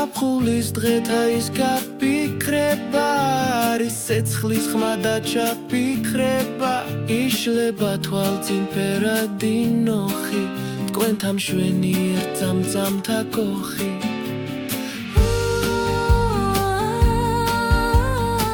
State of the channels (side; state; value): both; identical; correlation 1.00